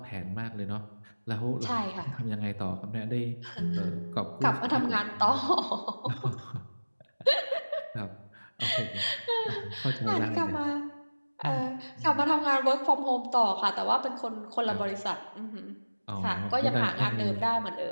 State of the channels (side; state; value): both; inverted; correlation -1.00